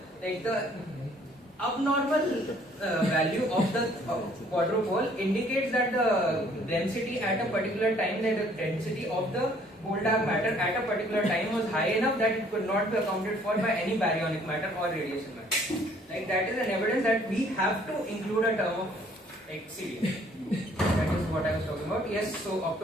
the abnormal value of the quadrupole indicates that the density at a particular time, that the density of the whole dark matter at a particular time was high enough that it could not be accounted for by any baryonic matter or radiation matter. Like that is an evidence that we have to include a term of like CD. That is what I was talking about. Yes, so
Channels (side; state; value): both; normal; correlation 0.60